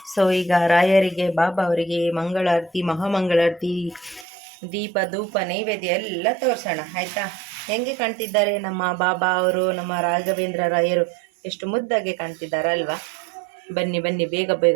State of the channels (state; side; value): drops out; left; at 4.2 s